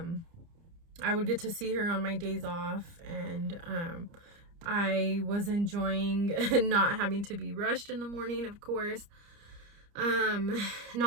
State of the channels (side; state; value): left; late; 30 ms